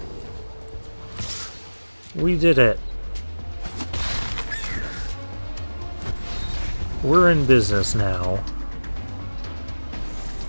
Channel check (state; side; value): inverted; both; correlation -1.00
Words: We did it. We're in business now.